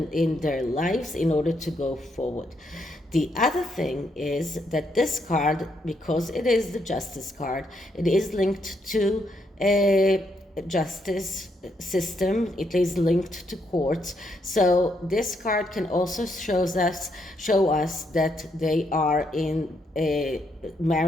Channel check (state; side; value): normal; both; correlation 0.76